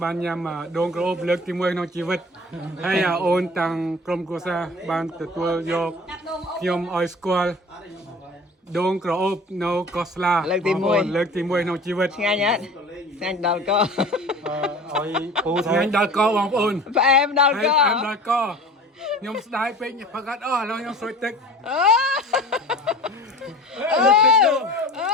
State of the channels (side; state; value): both; normal; correlation 0.40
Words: បានញ៉ាំដងក្រអូបលើកទី1ក្នុងជីវិតហើយអូនតាំងក្រុមគ្រួសារបានទទួលយកខ្ញុំឲ្យស្គាល់ដងក្រអូបនៅកោះស្លា លើកទី1 បងប្អូនលើកទី1ក្នុងជីវិត ngay nhá nhanh đào co ឲ្យពូថ្ងៃដល់កបងប្អូន và em đào ហើយ co អែមដល់កខ្ញុំស្ដាយពេកផឹកអត់អស់ឥឡូវខ្ញុំស្រួយទឹក